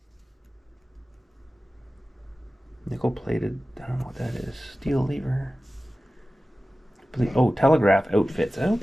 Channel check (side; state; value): both; normal; correlation 0.95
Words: Nickel plated. I don't know what that is. Steel lever. Oh, telegraph outfits.